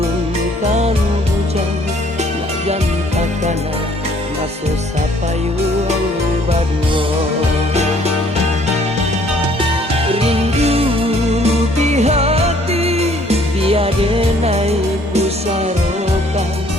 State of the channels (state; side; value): normal; both; correlation 0.60